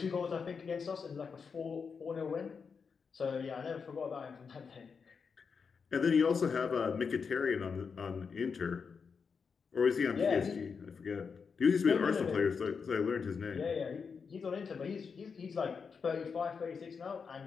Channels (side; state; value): right; quieter; 5.7 dB